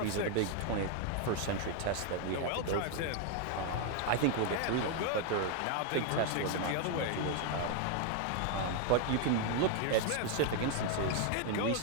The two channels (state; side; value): different; both; correlation 0.01